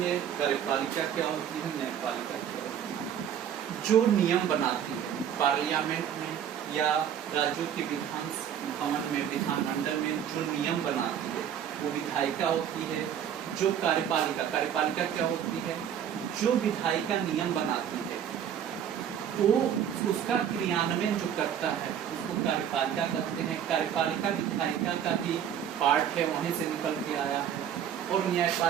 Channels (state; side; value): quieter; left; 9.2 dB